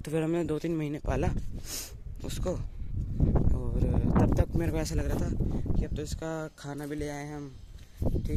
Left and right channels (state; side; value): identical; both; correlation 1.00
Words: फिर हमने 2-3 महीने पाला उसको। और तब तक मेरे को ऐसा लग रहा था कि अब तो इसका खाना भी ले आए हैं हम,